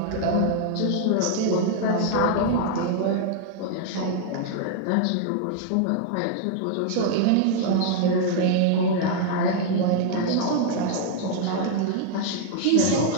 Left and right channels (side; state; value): both; different; correlation -0.01